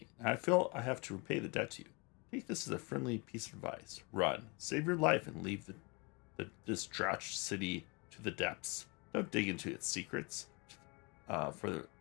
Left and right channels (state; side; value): quieter; right; 29.9 dB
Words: I feel I have to repay the debt to you. Take this as a friendly piece of advice. Run. Save your life and leave the distraught city to the depths. Don't dig into its secrets, for